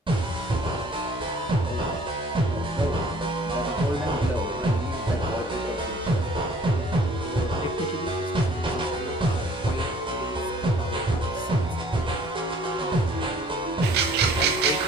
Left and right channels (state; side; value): normal; both; correlation 0.55